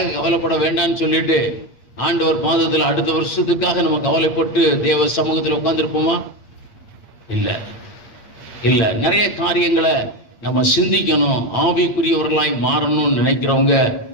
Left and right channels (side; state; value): right; late; 9.0 ms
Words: கவலைப்பட வேண்டாம்னு சொல்லிட்டு ஆண்டவர் பாதத்தில் அடுத்த வருஷத்துக்காக நம்ம கவலைப்பட்டு தேவ சமூகத்தில் உட்கார்ந்துருப்போமா? இல்ல. நிறைய காரியங்களை நம்ம சிந்திக்கணும். ஆவிக்குரியவர்களாய் மாறணும்னு நினைக்கிறவங்க